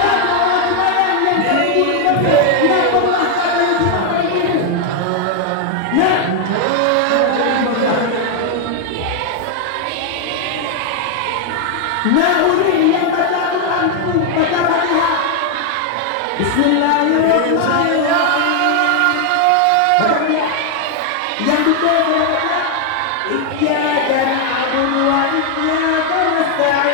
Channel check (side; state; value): both; different; correlation 0.00